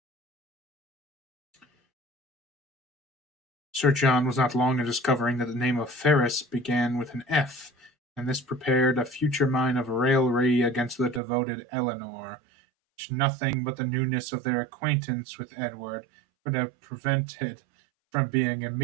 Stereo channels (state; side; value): drops out; left; at 11.2 s